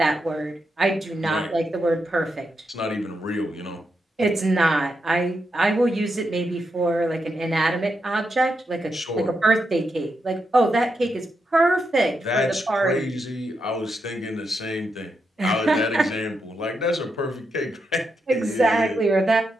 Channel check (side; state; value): both; normal; correlation 0.84